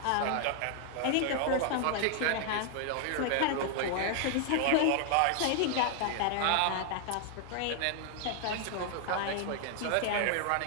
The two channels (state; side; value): different; both; correlation 0.00